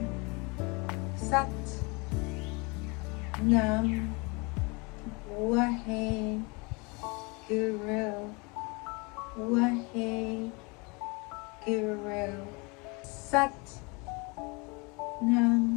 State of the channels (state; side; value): quieter; right; 29.0 dB